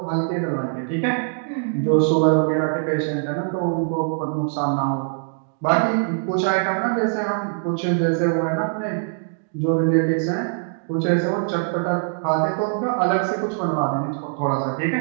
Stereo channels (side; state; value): left; silent; digital silence